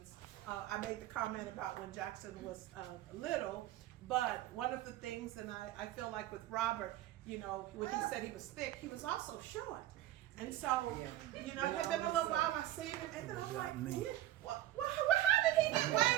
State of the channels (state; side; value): quieter; left; 13.8 dB